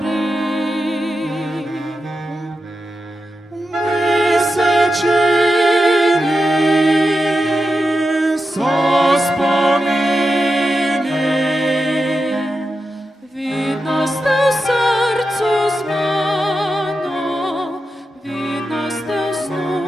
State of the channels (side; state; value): both; normal; correlation 0.89